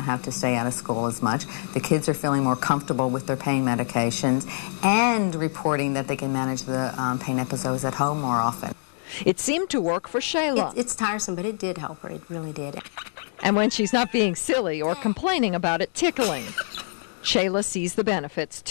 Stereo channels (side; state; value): right; silent; digital silence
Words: have to stay out of school as much. The kids are feeling more comfortable with their pain medications and reporting that they can manage the pain episodes at home more often. It seemed to work for Shayla. It's tiresome, but it did help her. It really did. And when she's not being silly or complaining about it tickling, Shayla sees the benefits